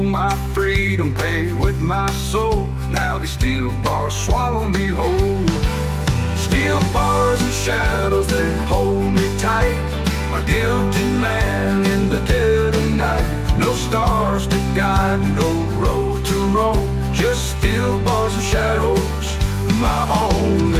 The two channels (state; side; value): identical; both; correlation 1.00